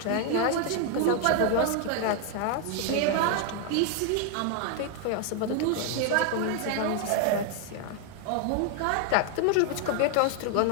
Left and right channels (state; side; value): different; both; correlation 0.00